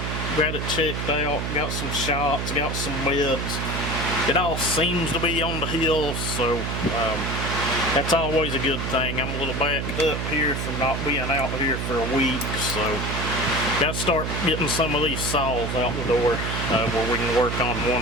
got it checked out, got some shots, got some meds. It all seems to be on the hill, so that's always a good thing. I'm a little backed up here from not being out here for a week, so gotta start getting some of these saws out the door where we can work on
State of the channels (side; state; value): right; noise; hum, 2 dB below the sound